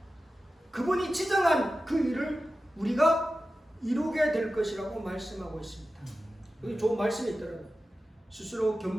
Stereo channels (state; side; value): normal; both; correlation 0.93